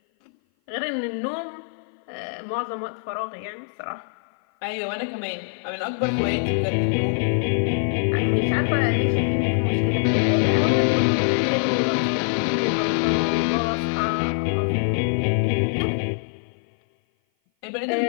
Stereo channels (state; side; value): silent; right; 56 dB below the other